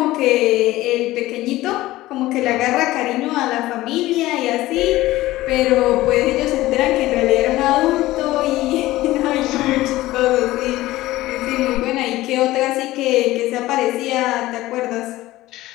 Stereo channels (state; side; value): quieter; right; 17.0 dB